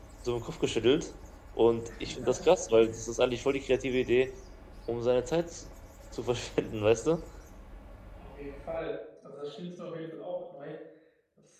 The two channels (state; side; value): identical; both; correlation 1.00